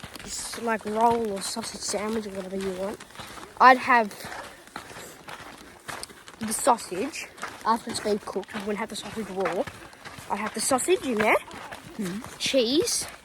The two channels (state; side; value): identical; both; correlation 1.00